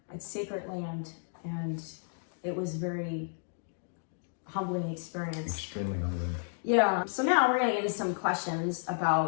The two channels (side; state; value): right; silent; digital silence